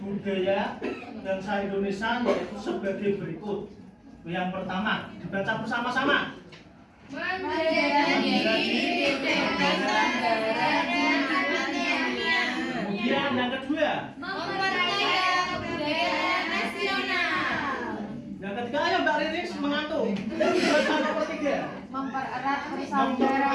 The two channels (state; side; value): identical; both; correlation 1.00